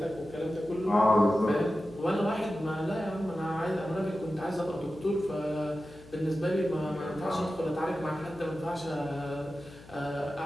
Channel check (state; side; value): noise; left; hum, 20 dB below the sound